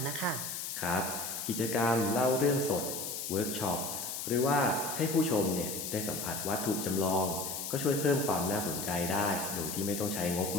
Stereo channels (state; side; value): noise; left; hiss, 5 dB below the sound